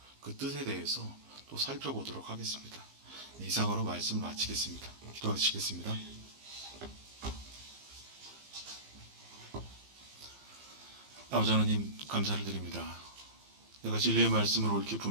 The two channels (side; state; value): left; late; 15 ms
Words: 그 뜻에 대해서 또 살펴보도록 하겠습니다. 이상으로 말씀을 마치겠습니다. 기도하시겠습니다. 아버지 하나님 감사를 드립니다. 내가 진리의 말씀을 옳게